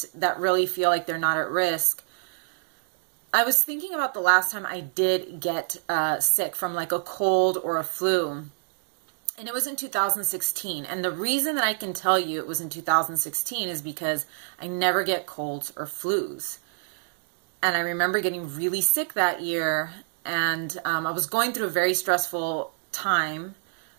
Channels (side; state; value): left; silent; digital silence